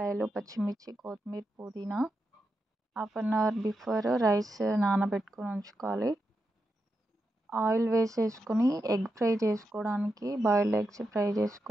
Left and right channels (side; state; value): both; normal; correlation 0.87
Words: పచ్చిమిర్చి, కొత్తిమీర, పుదీనా. Half an hour before rice నానబెట్టుకొని ఉంచుకోవాలి. ఆయిల్ వేసేసుకొని ఎగ్ ఫ్రై చేసుకోవడానికి, బాయిల్డ్ ఎగ్స్ ఫ్రై